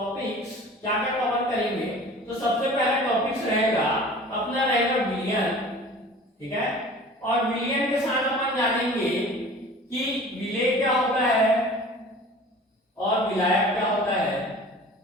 क्या क्या कवर करेंगे, तो सबसे पहला टॉपिक्स रहेगा अपना रहेगा विलियन, ठीक है। और विलियन के साथ अपन जानेंगे कि विलेय क्या होता है और विलायक क्या होता है,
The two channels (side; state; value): both; normal; correlation 0.43